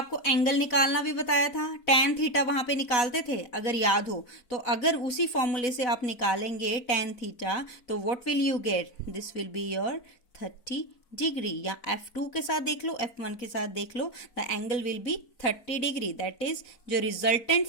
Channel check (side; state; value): right; late; 4.1 ms